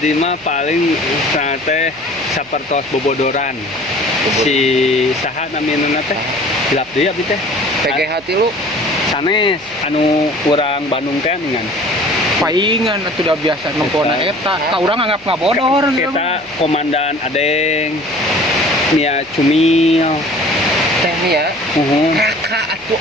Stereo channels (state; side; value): noise; right; hum, 28 dB below the sound